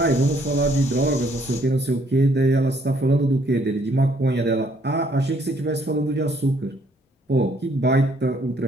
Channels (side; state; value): both; normal; correlation 0.66